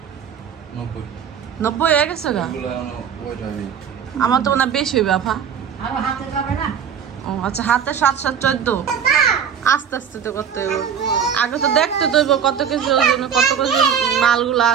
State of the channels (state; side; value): quieter; left; 7.8 dB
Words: 90 হয়ে গেছে গা। আমার তো মনে হয় বেশি হইবে আপা। ও আচ্ছা, হাতে 7 7 14। আস্তে আস্তে তো করতে হইব। আগে তো দেখতে তো হইব কত কেজি ওজন, কত কেজি মালগুলো